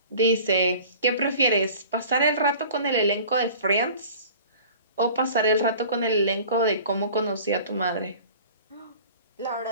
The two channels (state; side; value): inverted; both; correlation -0.44